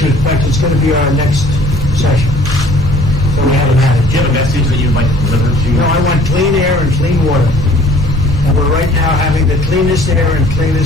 In fact, it's going to be our next session. So we haven't had it. Do you have a message that you'd like to deliver to? No, I want clean air and clean water. And we're right now having the cleanest air and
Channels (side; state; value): both; normal; correlation 0.53